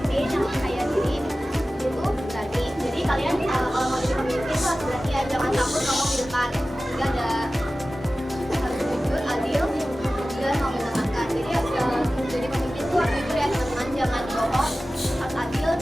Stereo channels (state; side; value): normal; both; correlation 0.96